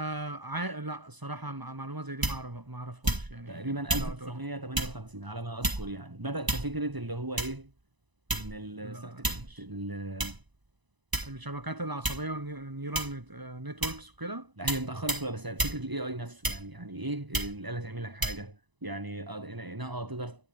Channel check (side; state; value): left; late; 1.0 ms